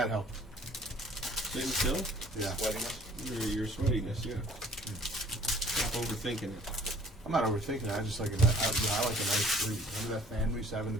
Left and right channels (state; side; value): normal; both; correlation 0.54